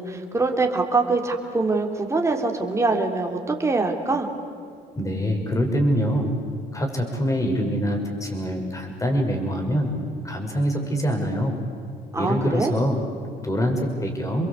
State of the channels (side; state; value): both; normal; correlation 0.73